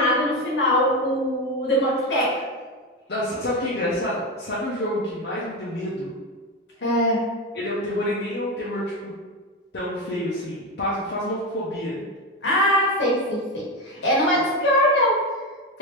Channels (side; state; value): both; normal; correlation 0.15